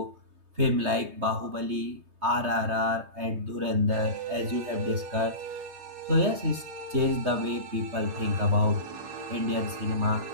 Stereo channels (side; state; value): left; late; 3.2 ms